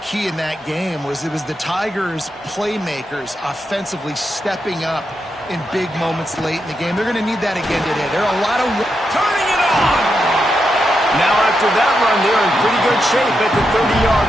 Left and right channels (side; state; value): both; normal; correlation 0.85